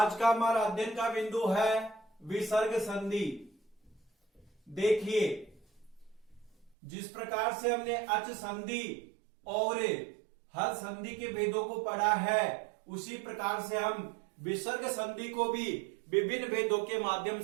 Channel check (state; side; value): drops out; left; at 6.8 s